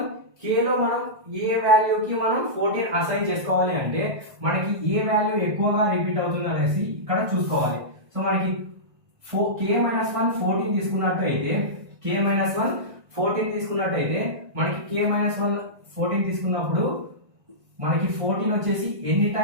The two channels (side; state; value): left; late; 1.6 ms